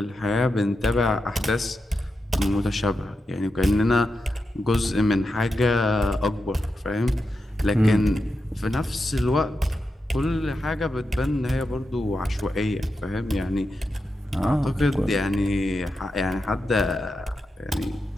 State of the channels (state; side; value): normal; both; correlation 0.88